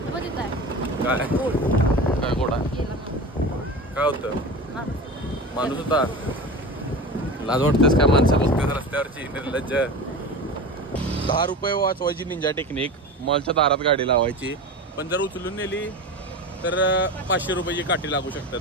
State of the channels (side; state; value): both; normal; correlation 0.30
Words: काय काय गोड आहे. काय होतं, माणूस होता. लाज वाटतेस काय माणसं बघतेस रस्त्यावरची निर्लज्ज. 10 रुपये वाचवायची निंजा टेक्निक. मॉलच्या दारात गाडी लावायची, पण जर उचलून नेली तर 500 रुपयाची काठी लागू